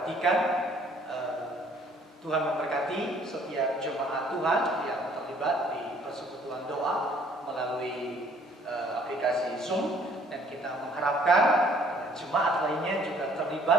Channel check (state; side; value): normal; both; correlation 0.60